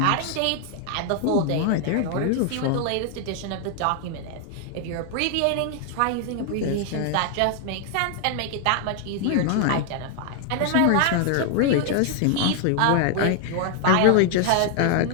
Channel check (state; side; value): different; both; correlation 0.00